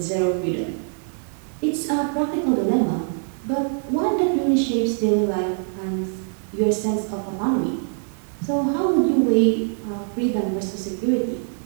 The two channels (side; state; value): left; silent; 59 dB below the other